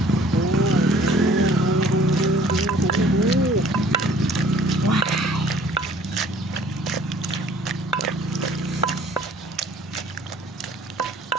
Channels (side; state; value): both; normal; correlation 0.54